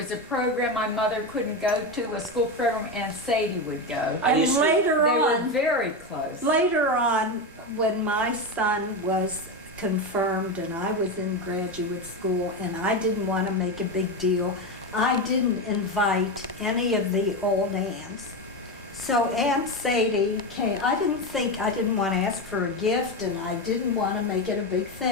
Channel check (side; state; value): both; normal; correlation 0.15